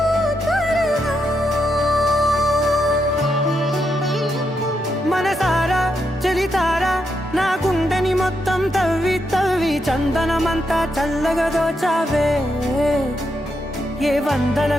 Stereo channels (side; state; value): both; normal; correlation 0.82